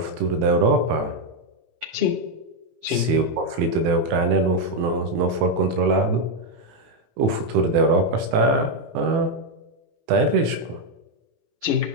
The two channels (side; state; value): left; late; 18 ms